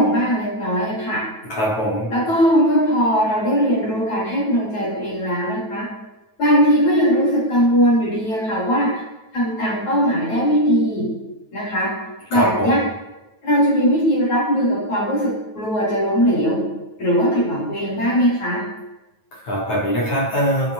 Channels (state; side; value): late; right; 9.2 ms